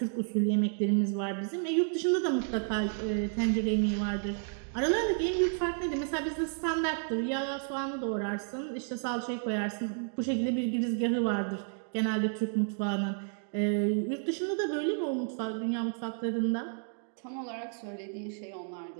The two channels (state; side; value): silent; left; 57 dB below the other